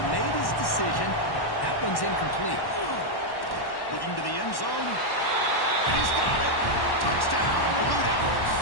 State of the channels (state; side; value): late; right; 1.1 ms